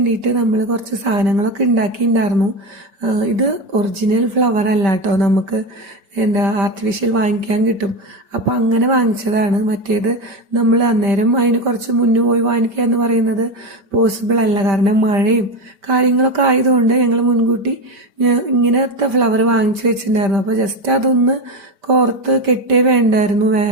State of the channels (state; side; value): late; left; 5.1 ms